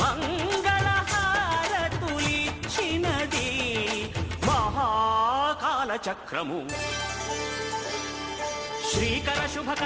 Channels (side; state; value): both; identical; correlation 1.00